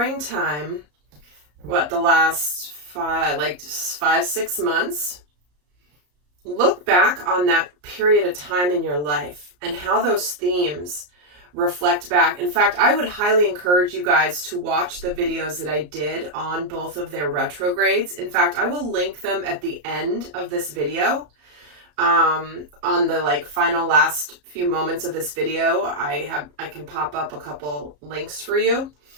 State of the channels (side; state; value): left; late; 34 ms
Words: the last 5-6 months, look back on that period of time in your life and how those themes reflect back. In fact, I would highly encourage you guys to watch the videos that I did on both of their retrogrades. In fact, I will link them at the end of this video. On the final last few moments of this video, I can pop up a couple links for you.